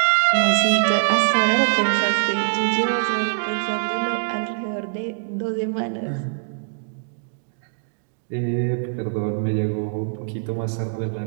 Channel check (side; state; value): left; silent; digital silence